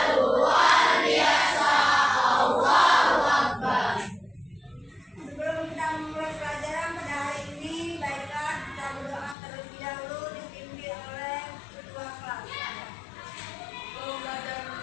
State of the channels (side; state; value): right; drops out; at 9.3 s